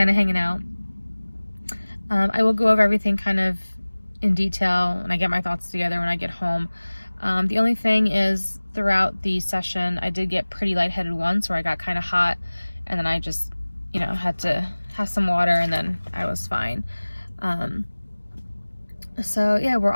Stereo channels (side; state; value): both; inverted; correlation -1.00